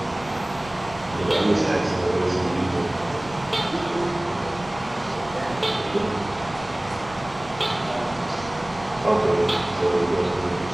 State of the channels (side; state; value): right; noise; rumble, 19 dB below the sound